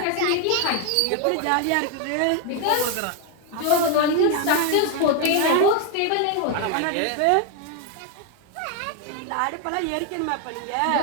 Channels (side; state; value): both; different; correlation 0.01